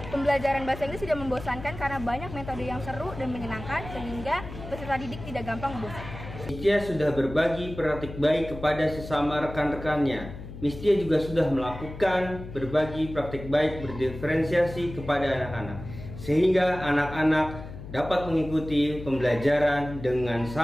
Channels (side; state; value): left; noise; hum, 12 dB below the sound